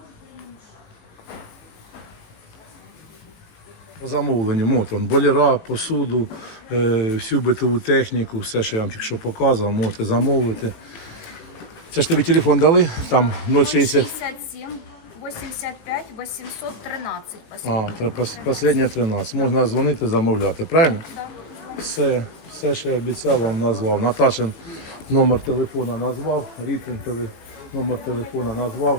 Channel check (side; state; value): right; late; 18 ms